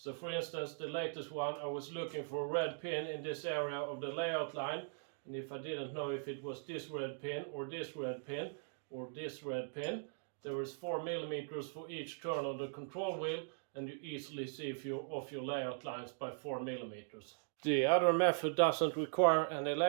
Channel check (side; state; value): left; silent; digital silence